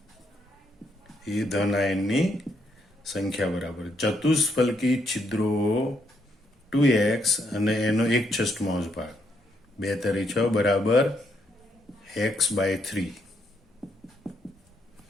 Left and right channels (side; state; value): both; normal; correlation 0.75